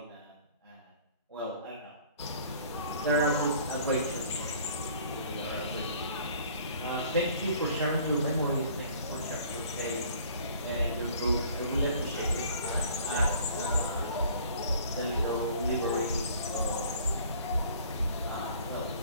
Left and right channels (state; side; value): inverted; both; correlation -0.53